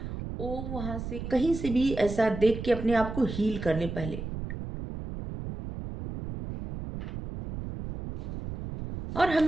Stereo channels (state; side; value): noise; right; rumble, 7 dB below the sound